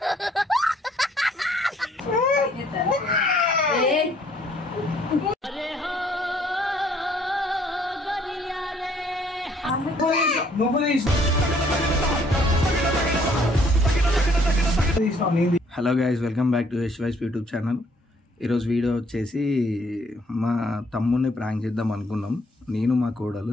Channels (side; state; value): both; normal; correlation 0.64